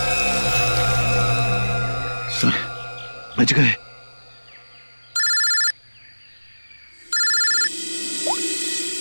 सर, बच गए।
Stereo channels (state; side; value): inverted; both; correlation -1.00